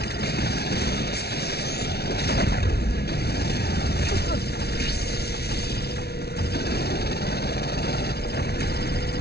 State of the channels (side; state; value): right; late; 0.47 ms